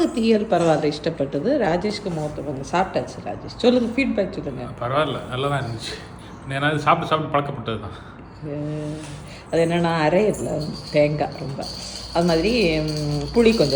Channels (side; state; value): both; identical; correlation 1.00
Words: தீயல் பரவாயில்ல, இஷ்டப்பட்டது. ராஜேஷ்க்கு மூத்தவங்க சாப்பிட்டாச்சு. ராஜேஷ் சொல்லுங்க, ஃபீட்பேக் சொல்லுங்க. பரவாயில்ல, நல்லா தான் இருந்துச்சு. ஏன்னா சாப்பிட்டு பழக்கப்பட்டது தான். அது என்னென்னா அரையில தேங்காய் ரொம்ப, அது மாதிரி புளி